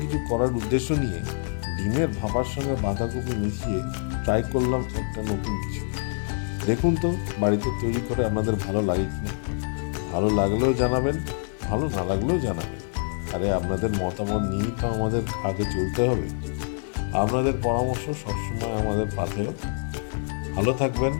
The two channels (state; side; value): silent; right; 61 dB below the other